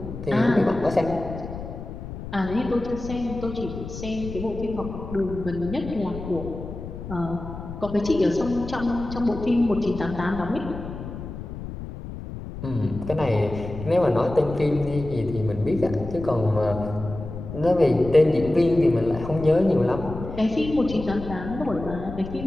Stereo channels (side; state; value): left; noise; rumble, 10 dB below the sound